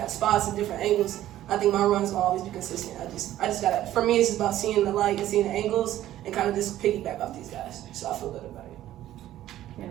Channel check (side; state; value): left; quieter; 13.4 dB